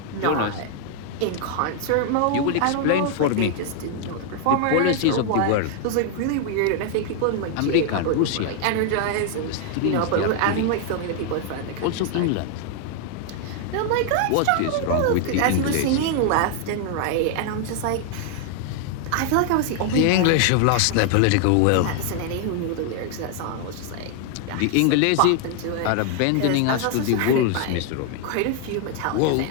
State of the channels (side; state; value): both; different; correlation 0.00